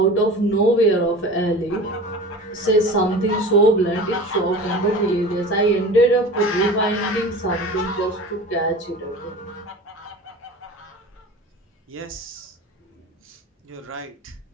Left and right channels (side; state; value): both; normal; correlation 0.36